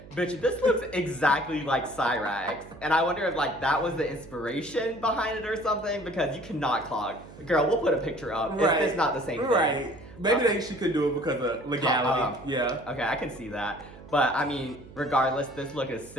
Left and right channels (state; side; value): noise; right; hum, 19 dB below the sound